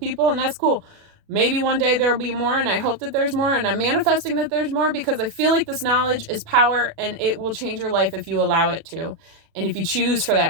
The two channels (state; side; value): late; left; 36 ms